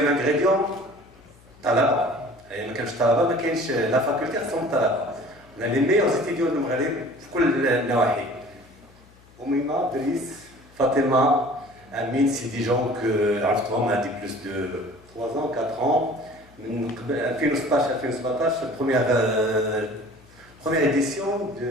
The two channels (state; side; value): noise; left; hum, 27 dB below the sound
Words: ingrédient, talaba. Et quand je talaba, la faculté, c'est talaba. On a les meilleurs étudiants de Maghreb, dans tous les nawahi. Oumima, Driss, Fatima, Amin, c'est des gens que on a dit plus de 3 ans, 4 ans. En 2016-2017, première édition